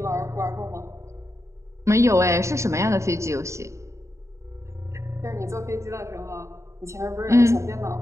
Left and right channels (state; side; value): late; left; 0.14 ms